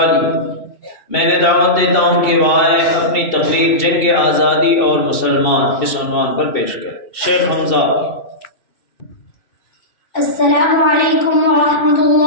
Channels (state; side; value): late; right; 2.7 ms